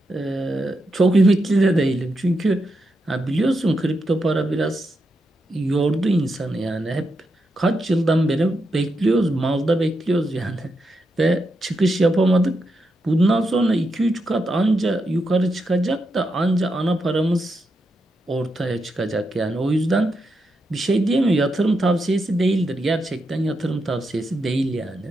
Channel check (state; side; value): normal; both; correlation 0.84